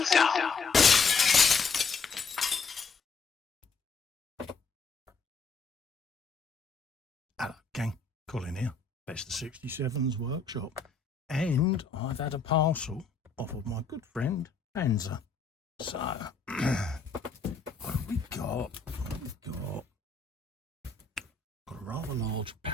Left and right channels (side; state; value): right; quieter; 4.7 dB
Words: down. Hello, gang. Colin here, Festa 67's workshop. And I've had a parcel off of my good friend, Panzer. So, what have we got? Got a rather large